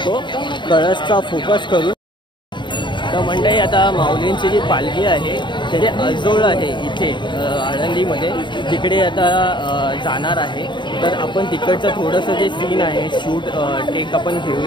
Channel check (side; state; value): right; late; 0.23 ms